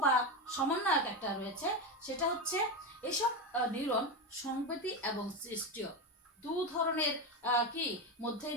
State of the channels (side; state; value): both; normal; correlation 0.15